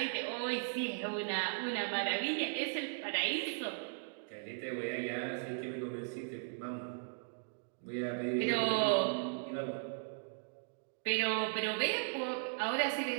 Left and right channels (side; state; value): left; silent; digital silence